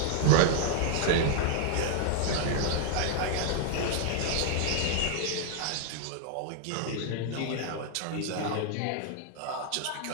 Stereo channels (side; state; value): both; different; correlation 0.00